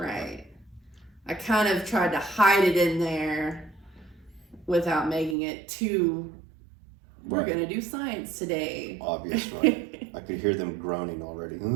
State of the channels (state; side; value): drops out; left; at 5.4 s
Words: I kind of tried to hide it in there without making it too, we're going to do science today. Obvious, right? I could hear them groaning already.